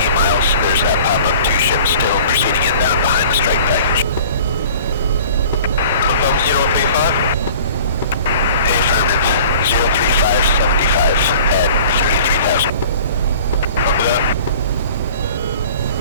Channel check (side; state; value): both; inverted; correlation -0.47